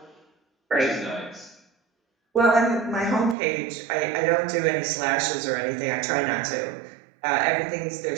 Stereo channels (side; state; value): left; drops out; at 3.4 s